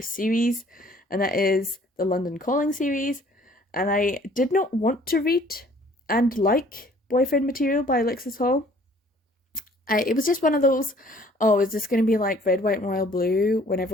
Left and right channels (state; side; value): normal; both; correlation 0.56